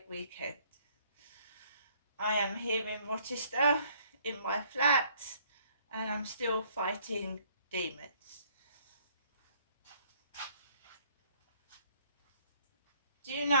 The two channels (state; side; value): inverted; both; correlation -0.61